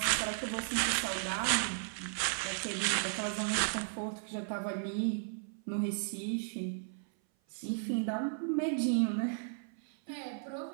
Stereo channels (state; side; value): silent; left; 54 dB below the other